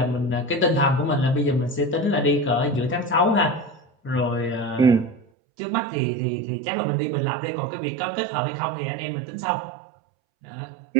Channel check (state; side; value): drops out; left; at 5.2 s